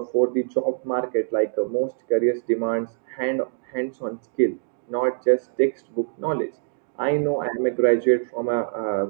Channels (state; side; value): silent; left; digital silence